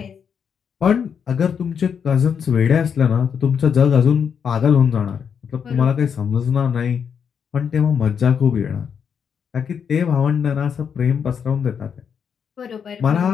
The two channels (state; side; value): quieter; right; 7.2 dB